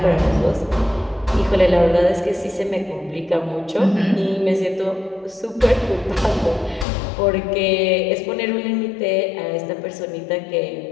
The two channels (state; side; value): drops out; right; at 6.9 s